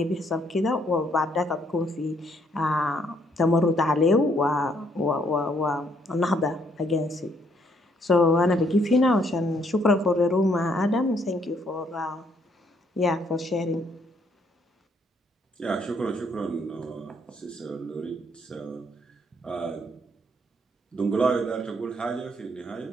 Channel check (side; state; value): both; normal; correlation 0.69